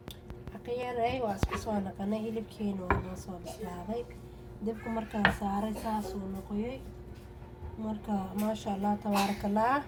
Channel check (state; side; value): identical; both; correlation 1.00